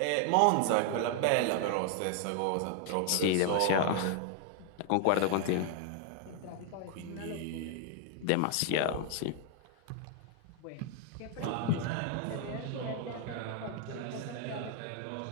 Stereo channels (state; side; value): different; both; correlation 0.00